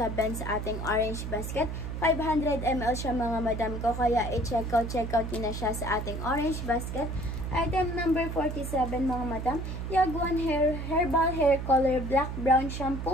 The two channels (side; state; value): right; noise; hum, 5 dB below the sound